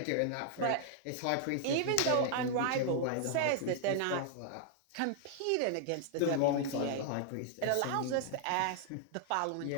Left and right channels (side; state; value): both; different; correlation -0.01